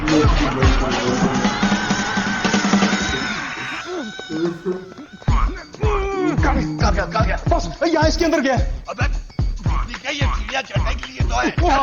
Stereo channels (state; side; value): identical; both; correlation 1.00